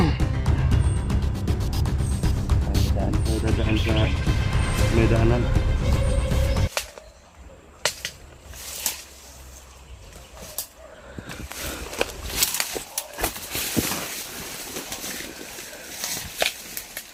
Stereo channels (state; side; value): identical; both; correlation 1.00